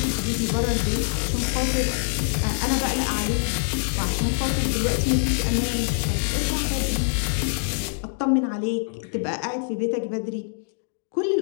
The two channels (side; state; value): right; silent; digital silence